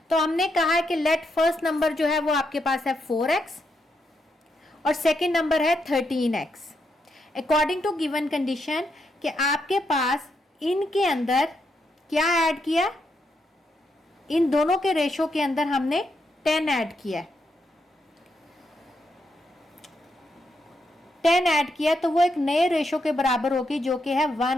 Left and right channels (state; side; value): normal; both; correlation 0.81